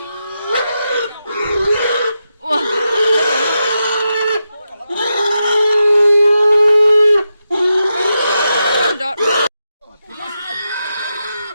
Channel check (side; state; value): both; inverted; correlation -0.87